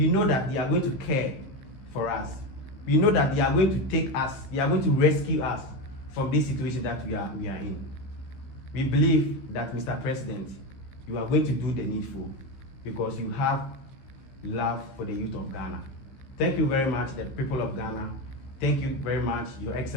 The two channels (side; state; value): right; late; 15 ms